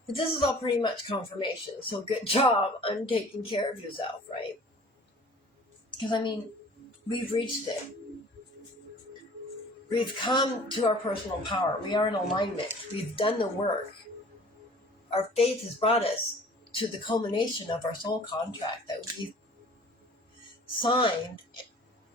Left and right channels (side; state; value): both; normal; correlation 0.48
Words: But this is all pretty much confirmation, so good job on taking care of yourself, right? Because, we've reached it. We've come to our personal power. We are in alignment. We've done the work. Our faith has brought us to the culmination of our soul contract that we've signed